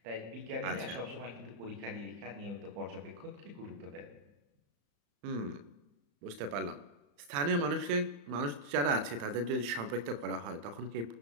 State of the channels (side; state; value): left; late; 35 ms